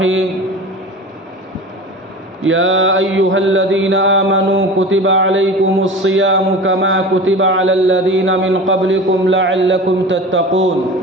يا أيها الذين آمنوا كتب عليكم الصيام كما كتب على الذين من قبلكم لعلكم تتقون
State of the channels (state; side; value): normal; both; correlation 0.34